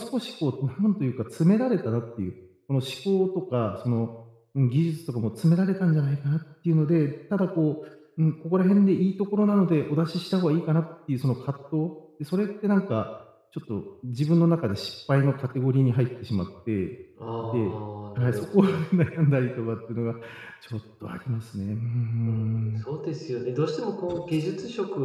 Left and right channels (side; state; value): both; identical; correlation 1.00